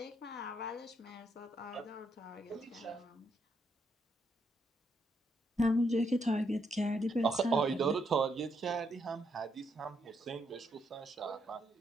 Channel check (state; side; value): normal; both; correlation 0.76